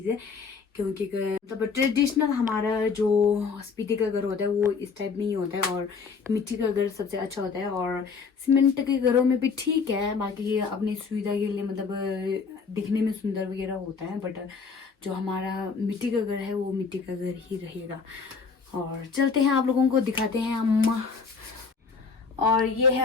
क्योंकि मतलब ट्रेडिशनल हमारा जो स्पीति का घर होता है वो इस टाइप में ही होता है और मिट्टी का घर सबसे अच्छा होता है। और सीमेंट के घरों में भी ठीक है, बाकी अपनी सुविधा के लिए मतलब दिखने में सुंदर वगैरह होता है, बट जो हमारा मिट्टी का घर है वो मिट्टी का घर ही रहेगा। और चलते हैं आप लोगों को दिखाते हैं अम्मा। और ये है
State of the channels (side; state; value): right; quieter; 5.2 dB